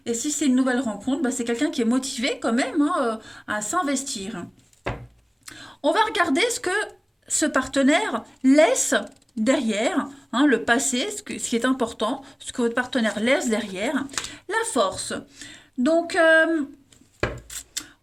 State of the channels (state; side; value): identical; both; correlation 1.00